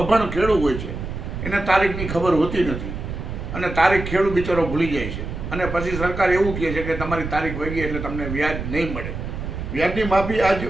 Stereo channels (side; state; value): right; noise; rumble, 6 dB below the sound